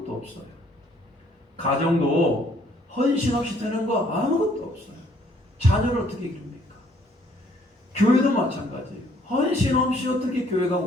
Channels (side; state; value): both; normal; correlation 0.63